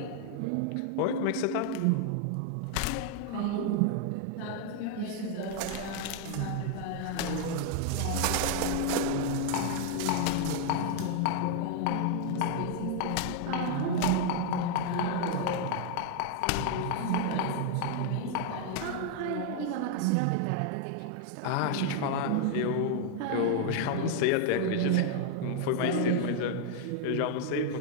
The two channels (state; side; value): different; both; correlation 0.00